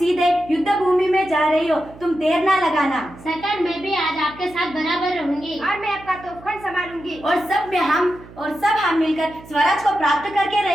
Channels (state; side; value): noise; right; hum, 19 dB below the sound